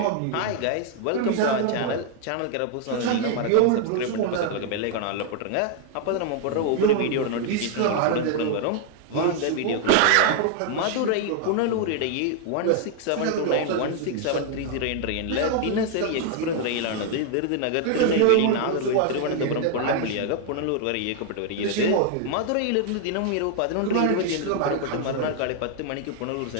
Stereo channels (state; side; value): different; both; correlation 0.00